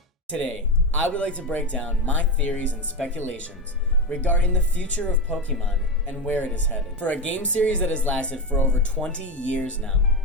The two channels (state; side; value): normal; both; correlation 0.16